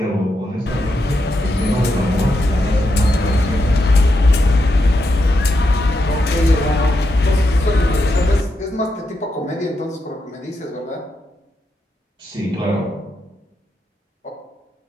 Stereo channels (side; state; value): both; normal; correlation 0.84